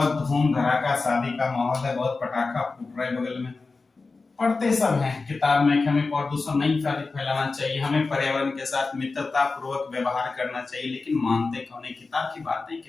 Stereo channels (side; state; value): right; quieter; 4.0 dB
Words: धूम धड़ाका शादी का माहौल है, बहुत पटाखा फूट रहा है बगल में। पढ़ते सब हैं किताब में कि हमें प्रदूषण नहीं फैलाना चाहिए, हमें पर्यावरण के साथ मित्रता पूर्वक व्यवहार करना चाहिए, लेकिन मानते कौन है, किताब की बातें